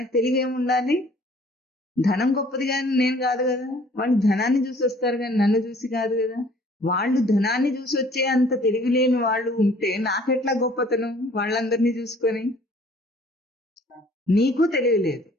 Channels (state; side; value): normal; both; correlation 0.55